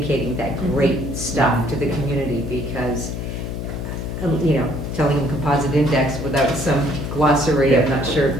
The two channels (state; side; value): noise; left; hum, 5 dB below the sound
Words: that great stuff to the community, because telling them composite index without some glossary, I'm not sure